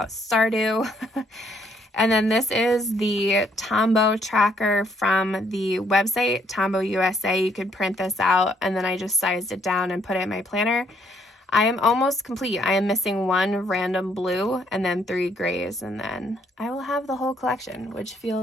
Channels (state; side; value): normal; both; correlation 0.69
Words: Stardew. And then this is the Tombow tracker from the website, Tombow USA. You could print this out, and then I just sized it down and put it in my planner. I am almost complete. I am missing 1 random blue and then 3 grays, and then I will have the whole collection, which